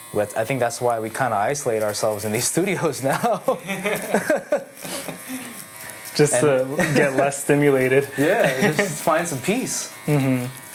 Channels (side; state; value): both; identical; correlation 1.00